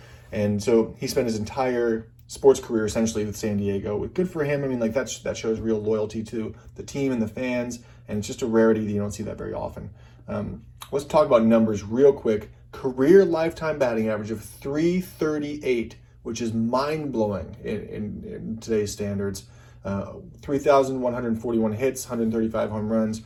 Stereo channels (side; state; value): both; identical; correlation 1.00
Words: And so he spent his entire sports career essentially with San Diego. Good for him. I mean, like that shows real loyalty to the team and the fans, and it's just a rarity that you don't see that very often. Let's talk about numbers real quick. Career lifetime batting average of .338, which is mind-blowing in today's standards. 3,141 hits, 135 home runs,